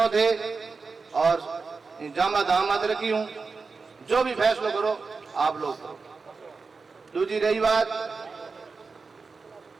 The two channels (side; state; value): left; quieter; 4.5 dB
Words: थे और जामा दामाद रखी हूं, जो भी फैसला करो आप लोग करो। दूसरी रही बात